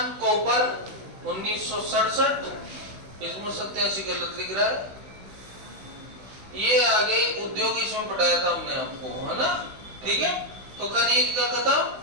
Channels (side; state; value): left; late; 16 ms